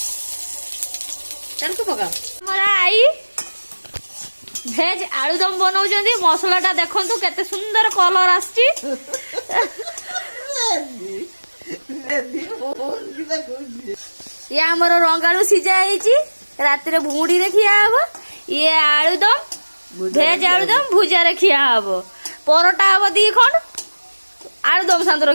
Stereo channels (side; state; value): both; inverted; correlation -1.00